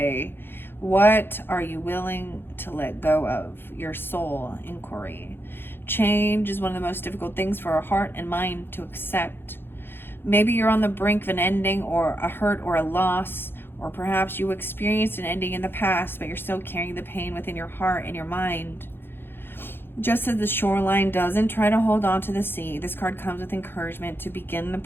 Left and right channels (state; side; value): late; right; 0.10 ms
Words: What are you willing to let go of? Your soul inquiry. Change is one of the most difficult things for our heart and mind to accept. Maybe you're on the brink of an ending or a hurt or a loss, or perhaps you experienced an ending in the past, but you're still carrying the pain within your heart and your mind. Just as the shoreline doesn't try to hold on to the sea, this card comes with encouragement to begin the